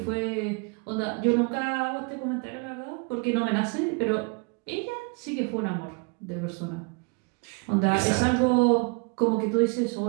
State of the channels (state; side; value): quieter; left; 32.2 dB